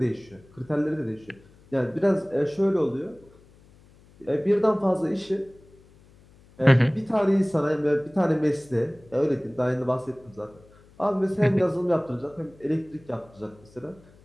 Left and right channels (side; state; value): left; noise; hum, 27 dB below the sound